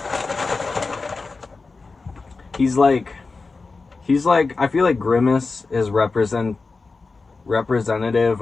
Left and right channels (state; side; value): quieter; right; 4.1 dB